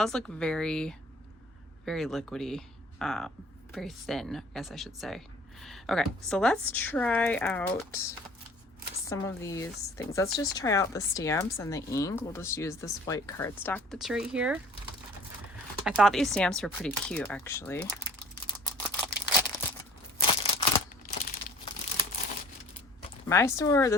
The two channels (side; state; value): both; normal; correlation 0.50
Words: look very, very liquidy, very thin, I guess I should say. Okay, so let's try out some of these things. Let's just try out the stamps and the ink. We'll just use this white cardstock that's right here. I thought these stamps were pretty cute, actually. My store,